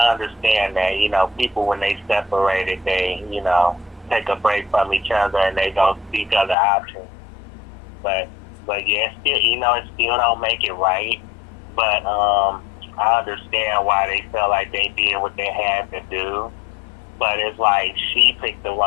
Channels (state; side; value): drops out; right; at 6.6 s